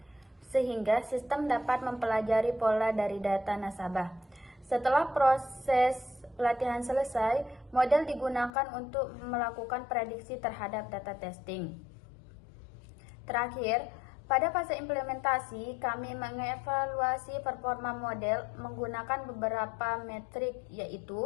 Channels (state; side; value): drops out; right; at 8.5 s